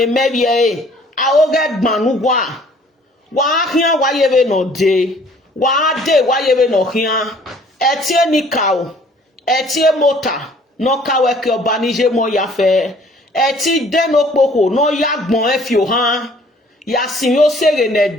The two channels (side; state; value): both; normal; correlation 0.56